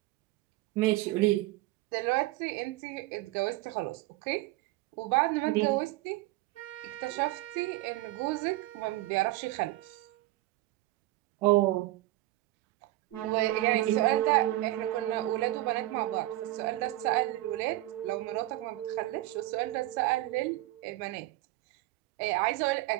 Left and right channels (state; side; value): quieter; left; 17.3 dB